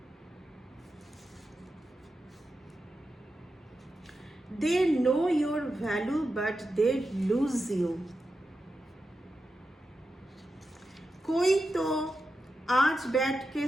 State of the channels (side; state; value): both; normal; correlation 0.89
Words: They know your value but they lose you। कोई तो आज बैठ के